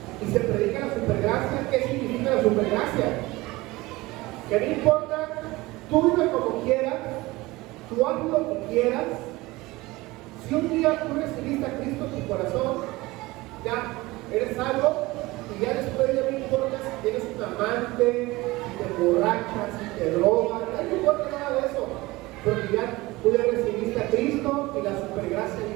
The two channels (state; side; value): quieter; left; 20.7 dB